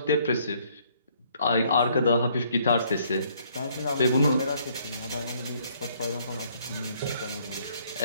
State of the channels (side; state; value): both; inverted; correlation -0.65